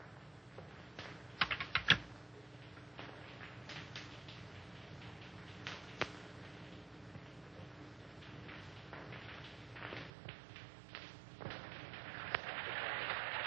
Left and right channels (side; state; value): left; drops out; at 10.1 s